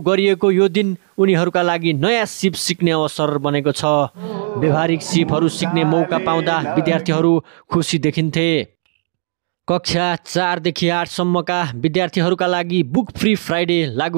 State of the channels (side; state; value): left; silent; 68 dB below the other